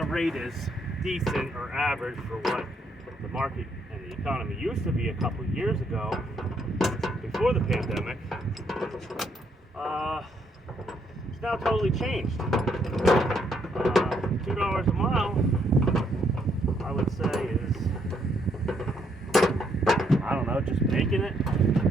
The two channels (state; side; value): normal; both; correlation 0.72